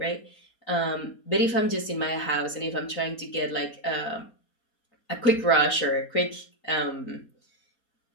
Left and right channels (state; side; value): late; right; 4.2 ms